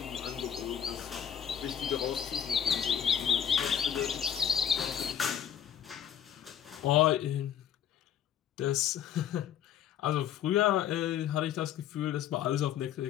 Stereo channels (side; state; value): right; quieter; 9.4 dB